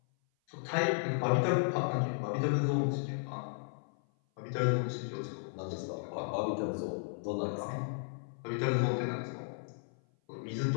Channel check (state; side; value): silent; right; 55 dB below the other